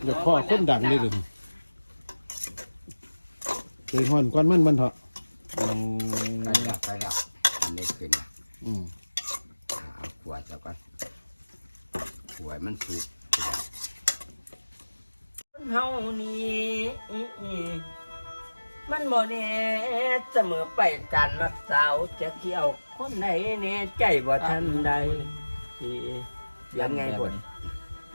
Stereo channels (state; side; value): inverted; both; correlation -1.00